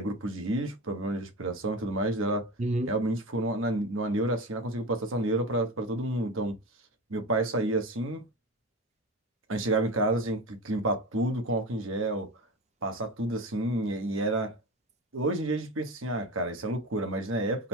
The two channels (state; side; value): normal; both; correlation 0.27